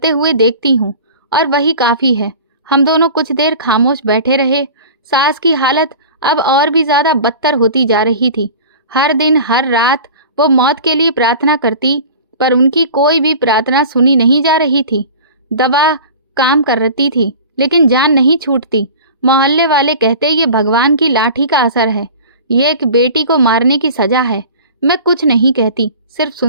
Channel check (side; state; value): both; inverted; correlation -0.39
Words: हुए देखती हूँ, और वही काफी है। हम दोनों कुछ देर खामोश बैठे रहे। सास की हालत अब और भी ज्यादा बदतर होती जा रही थी। हर दिन हर रात वो मौत के लिए प्रार्थना करती, पर उनकी कोई भी प्रार्थना सुनी नहीं जा रही थी। दवा काम कर रही थी, लेकिन जान नहीं छूटती। मोहल्ले वाले कहते ये भगवान की लाठी का असर है, ये एक बेटी को मारने की सजा है। मैं कुछ नहीं कहती, सिर्फ